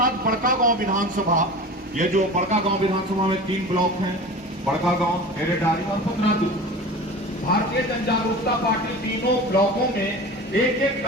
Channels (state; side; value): normal; both; correlation 0.35